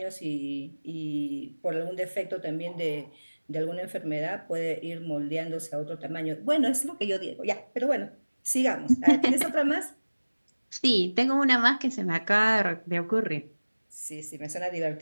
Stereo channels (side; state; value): both; inverted; correlation -1.00